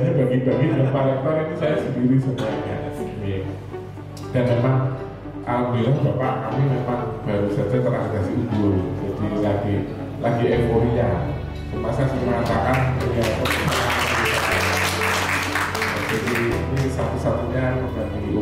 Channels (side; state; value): both; identical; correlation 1.00